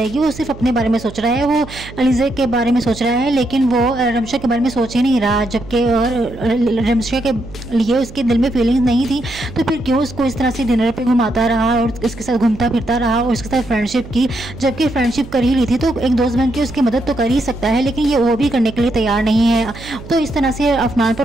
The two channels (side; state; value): right; noise; hum, 16 dB below the sound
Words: वो सिर्फ अपने बारे में सोच रहा है, वो अलीज़े के बारे में सोच रहा है, लेकिन वो रमशा के बारे में सोच ही नहीं रहा, जबकि रमशा के लिए उसके दिल में फीलिंग्स नहीं थी, तो फिर क्यों उसको इस तरह से डिनर पे घुमाता रहा और उसके साथ घूमता फिरता रहा और उसके साथ फ्रेंडशिप की, जबकि फ्रेंडशिप कर ही ली थी तो एक दोस्त बन के उसकी मदद तो कर ही सकता है, लेकिन ये वो भी करने के लिए तैयार नहीं है। तो इस तरह से अफनान